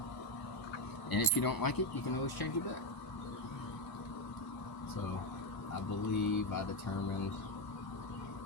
And if you don't like it, you can always change it back. So I believe I determined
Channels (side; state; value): right; late; 1.0 ms